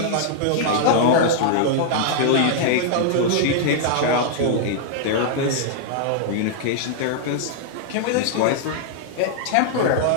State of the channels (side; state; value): both; different; correlation -0.01